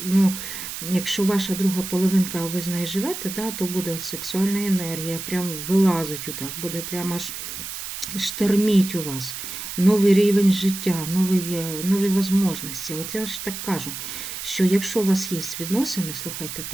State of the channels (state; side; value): noise; right; hiss, 8 dB below the sound